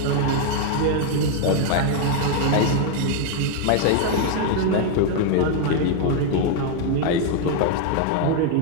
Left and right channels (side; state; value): both; different; correlation 0.00